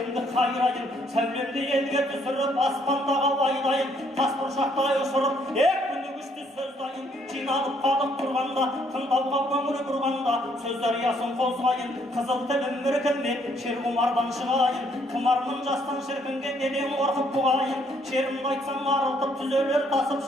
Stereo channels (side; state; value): both; normal; correlation 0.68